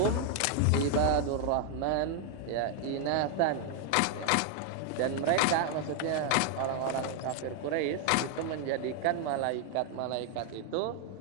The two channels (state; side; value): different; both; correlation 0.00